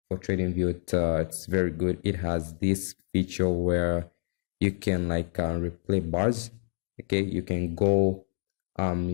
for TradingView. It's very good. It has this feature where you can replay bars. Okay, you can go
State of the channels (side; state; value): right; silent; 59 dB below the other